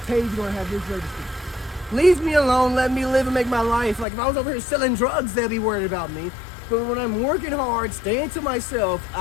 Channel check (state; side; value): drops out; right; at 4.0 s